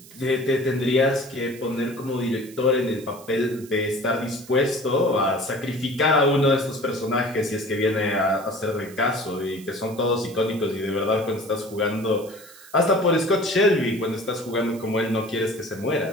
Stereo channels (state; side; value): noise; right; hiss, 20 dB below the sound